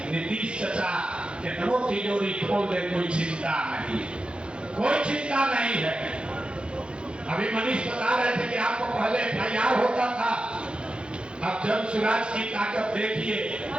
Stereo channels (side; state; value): left; late; 0.055 ms